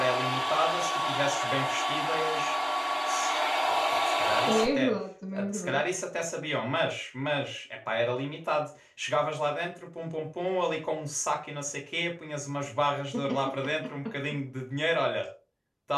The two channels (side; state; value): both; identical; correlation 1.00